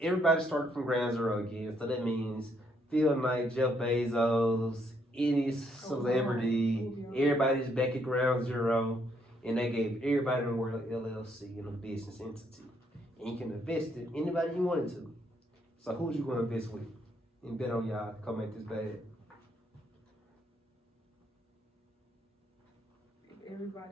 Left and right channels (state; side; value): normal; both; correlation 0.72